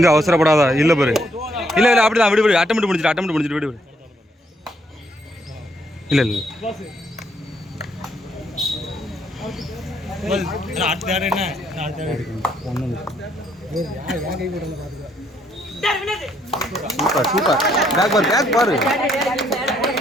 அவசரப்படாதா இல்லை பாரு இல்லை இல்லை அப்படிதான் விடு விடு அட்டமெண்ட் முடிஞ்சிட்டு விடு விடு இல்லை இல்லை சூப்பர் சூப்பர் பேக் பாரு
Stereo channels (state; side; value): normal; both; correlation 0.71